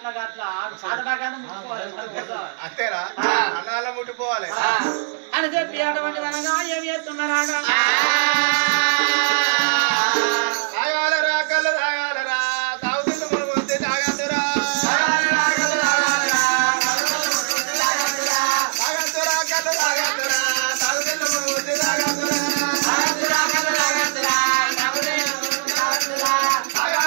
అంతేరా అన్నగాళ్ళ ముట్టిపోవాలి అని చెప్పి అటువంటి అనగా ఏమి చేస్తున్నారా తాగాలరా కళ్ళు తాగాలరా తాగుతున్న మునుగు వస్తే తాగద్దురా తాగద్దురా కళ్ళు తాగద్దురా తాగుతున్న మునుగు వస్తే తాగద్దురా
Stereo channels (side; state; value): left; silent; 64 dB below the other